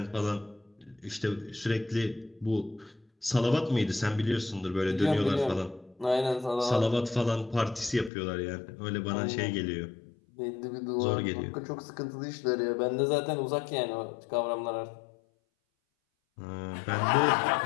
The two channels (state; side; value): drops out; right; at 8.1 s